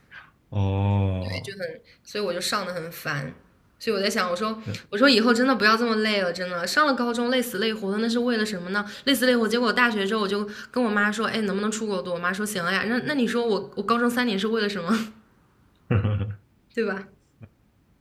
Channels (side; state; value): both; identical; correlation 1.00